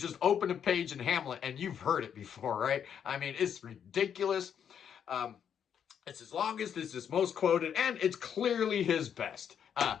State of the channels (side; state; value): right; quieter; 8.3 dB